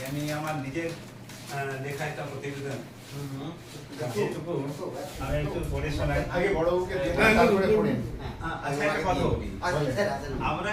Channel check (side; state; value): both; identical; correlation 1.00